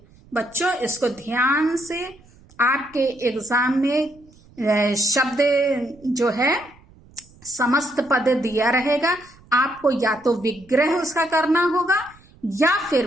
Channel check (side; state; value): right; noise; rumble, 27 dB below the sound